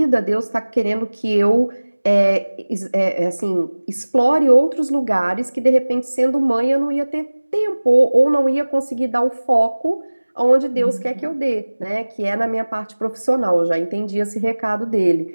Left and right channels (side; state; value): both; inverted; correlation -1.00